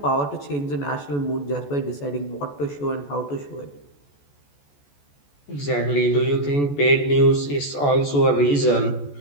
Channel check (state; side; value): late; right; 14 ms